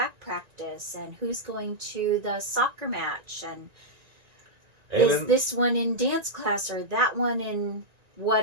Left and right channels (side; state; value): left; late; 1.9 ms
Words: practice, and who's going to the soccer match, and is this one in dance class or that one in